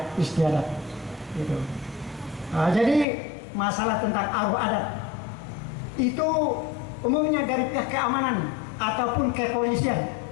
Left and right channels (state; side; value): drops out; right; at 3.1 s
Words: istiadat gitu. Jadi masalah tentang aruh adat itu umumnya dari pihak keamanan ataupun kepolisian